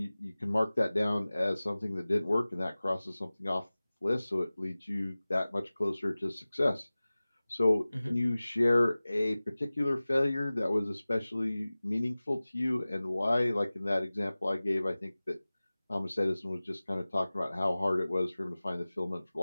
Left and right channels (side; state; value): both; inverted; correlation -0.98